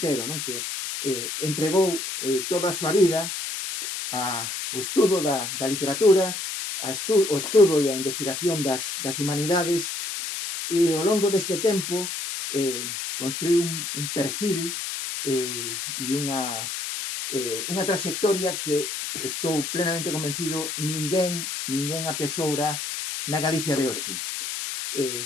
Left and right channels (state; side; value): noise; left; hiss, 4 dB below the sound